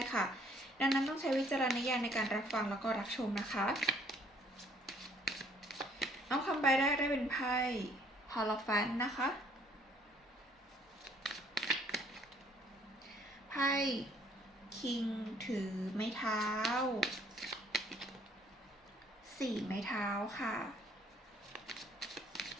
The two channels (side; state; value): both; normal; correlation 0.61